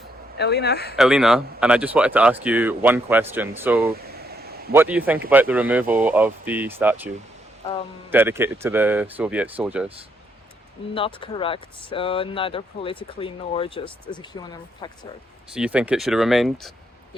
Elena, and I just wanted to ask you one question. So, what do you think about the removal of the statue dedicated to the Soviet soldiers? Not correct, neither politically nor just as a human factor. So you think it should have remained?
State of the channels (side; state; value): both; normal; correlation 0.75